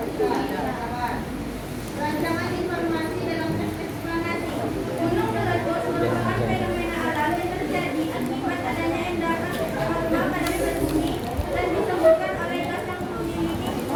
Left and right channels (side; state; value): both; identical; correlation 1.00